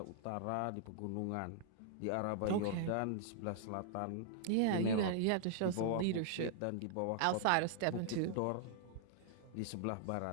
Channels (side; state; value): both; different; correlation -0.01